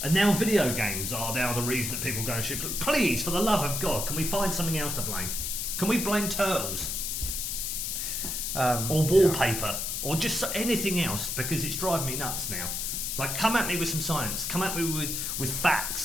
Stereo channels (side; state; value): left; noise; hiss, 2 dB below the sound